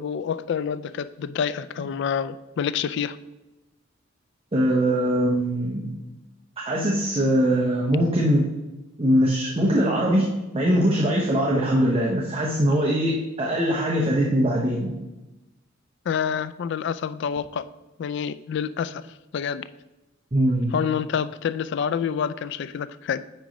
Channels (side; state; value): both; normal; correlation 0.55